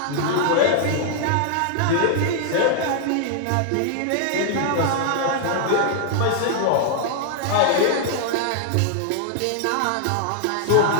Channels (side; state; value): both; different; correlation -0.01